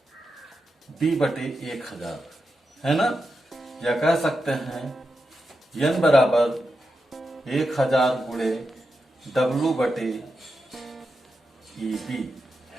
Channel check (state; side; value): normal; both; correlation 0.88